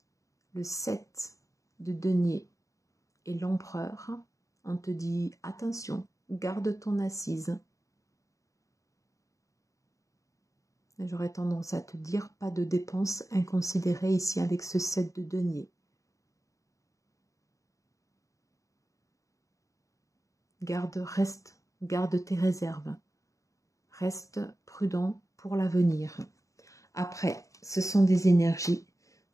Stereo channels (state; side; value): late; right; 0.16 ms